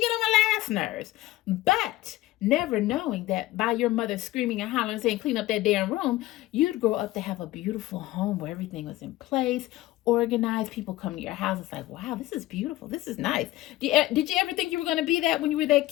on my last nerves. But never knowing that by your mother screaming and hollering and saying, clean up that damn room, you'd grow up to have a beautiful home where everything was in place, organized. People come to your house. It's like, wow, this is beautiful. This is nice. Did you ever think you were going to be that when you were that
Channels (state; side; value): quieter; right; 16.9 dB